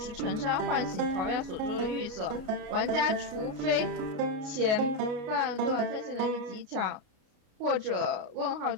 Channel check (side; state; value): left; late; 33 ms